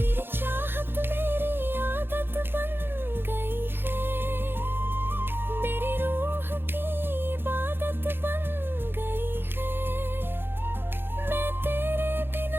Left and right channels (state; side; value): late; left; 0.10 ms